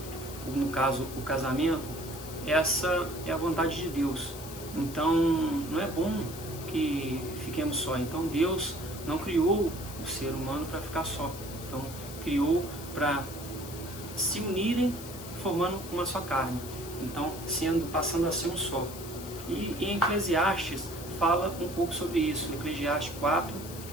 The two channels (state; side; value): noise; left; hiss, 13 dB below the sound